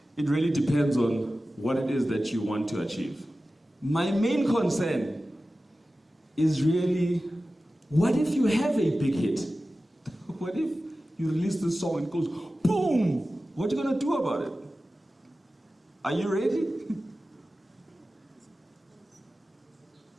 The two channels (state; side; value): normal; both; correlation 0.95